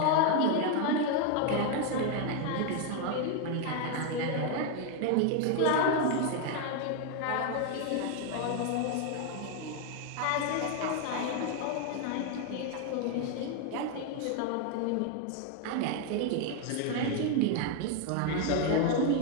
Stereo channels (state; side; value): different; both; correlation 0.01